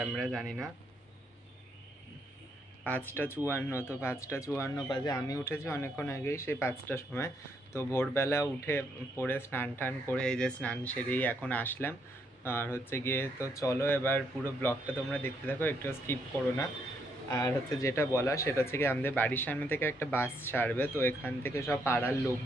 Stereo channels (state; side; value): normal; both; correlation 0.74